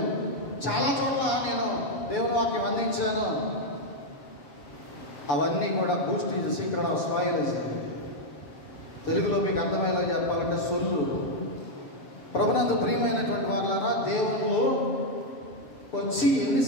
చాలా చోట్ల నేను దేవుని వాక్యం అందించాను, అవన్నీ కూడా Boost is secret of smile. తెలుగులో మీకు అర్థమయ్యేలా చెప్పాలంటే సొల్లు. ప్రభునందు ప్రియమైనటువంటి వాళ్ళారా, దేవుళ్ళు వచ్చి ఎన్ని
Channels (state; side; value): late; right; 6.9 ms